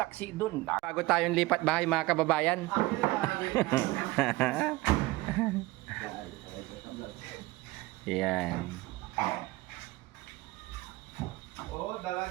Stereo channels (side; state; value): left; quieter; 19.9 dB